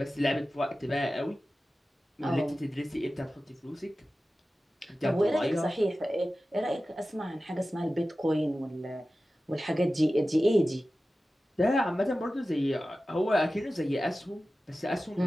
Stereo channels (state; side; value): normal; both; correlation 0.95